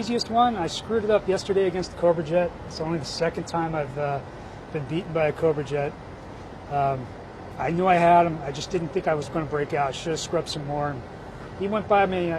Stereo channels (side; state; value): both; identical; correlation 1.00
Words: one. I screwed it up yesterday against the Cobra Jet. It's only the second time I've been beaten by a Cobra Jet. I knew I had him. I just didn't think I was going to break out. I should have scrubbed some more. And he went by me